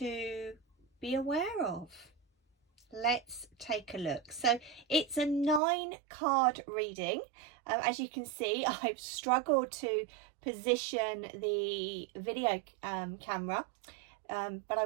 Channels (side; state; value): left; drops out; at 5.6 s